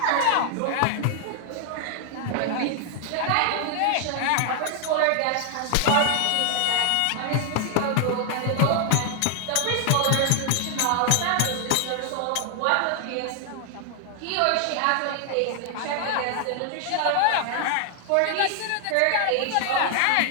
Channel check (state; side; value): different; both; correlation 0.00